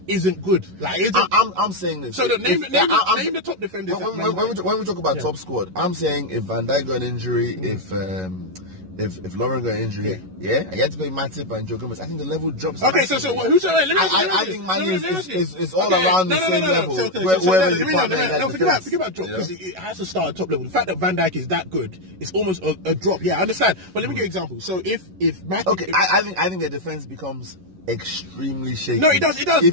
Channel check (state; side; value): late; left; 11 ms